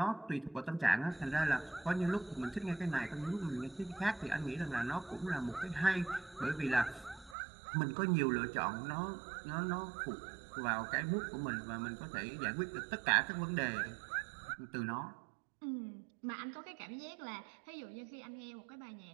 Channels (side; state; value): left; drops out; at 7.4 s